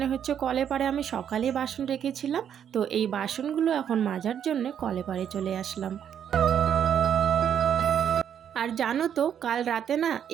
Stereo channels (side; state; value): left; quieter; 8.9 dB